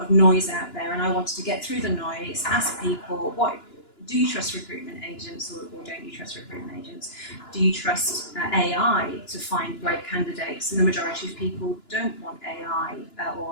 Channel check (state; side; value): late; right; 2.9 ms